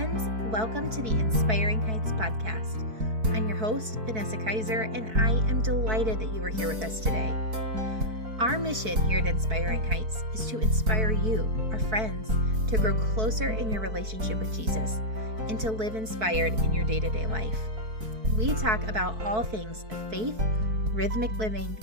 friends. Welcome to the Inspiring Heights podcast. I'm your host, Vanessa Kaiser, and I am delighted that you are here with us today. Our mission here at Inspiring Heights is to inspire you, our friends, to grow closer in your relationship with Jesus and to live inspired in your day-to-day life. We talk about all things faith, rhythmic living,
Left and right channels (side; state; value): left; late; 4.6 ms